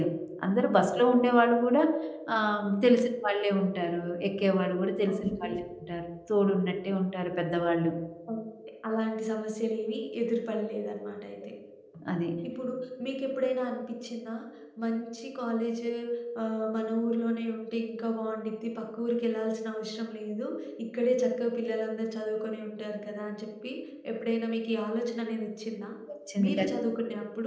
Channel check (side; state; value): both; identical; correlation 1.00